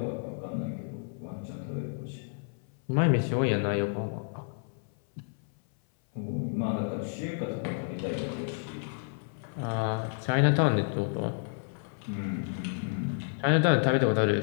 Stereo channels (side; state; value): right; silent; 56 dB below the other